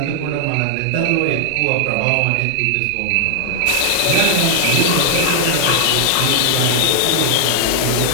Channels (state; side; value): different; both; correlation 0.00